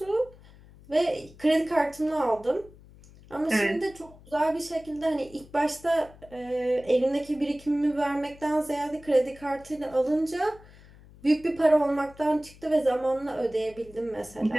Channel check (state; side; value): noise; left; hum, 23 dB below the sound